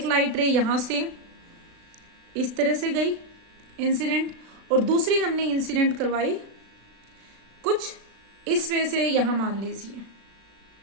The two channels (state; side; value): late; left; 36 ms